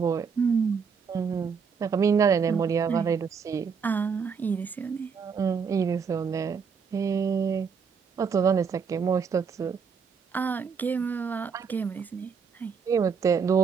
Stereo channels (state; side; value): quieter; left; 6.0 dB